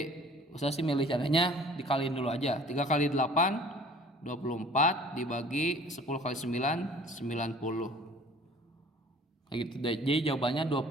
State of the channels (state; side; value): normal; both; correlation 0.50